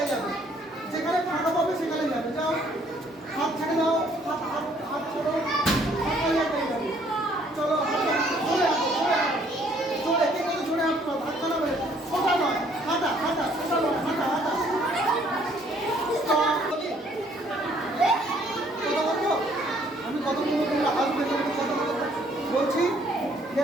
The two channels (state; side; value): normal; both; correlation 0.63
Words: যাবে, যেখানে ফাঁকা পাবে সেখানে যাবে। যাও, হাত ছেড়ে দাও, হাত হাত হাত ছোড়ো, ফাঁকা জায়গায় যাবে। চলো হাঁটো, জোরে হাঁটো, জোরে হাঁটো, জোরে, কে বলে জোরে হাঁটতে হবে? হাত বানাবে, সোজা নয়, হাঁটা হাঁটা, সোজা নয়, হাঁটা হাঁটা। আমি কতগুলো তোমরা আসবে, কথা বলছি।